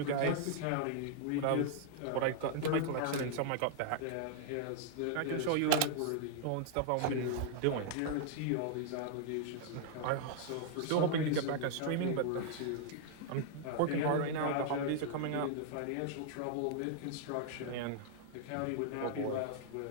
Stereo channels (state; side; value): different; both; correlation -0.01